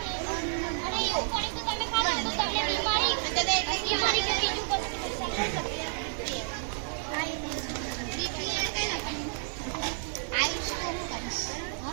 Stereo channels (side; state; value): left; silent; 57 dB below the other